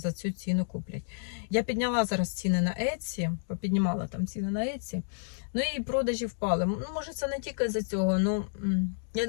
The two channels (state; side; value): silent; right; digital silence